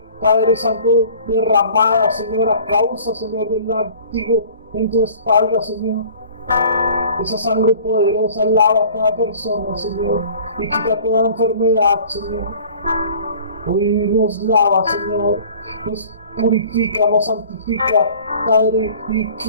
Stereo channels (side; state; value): both; inverted; correlation -0.48